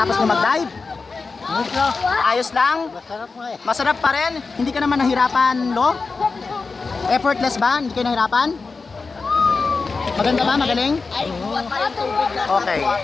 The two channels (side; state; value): right; quieter; 4.3 dB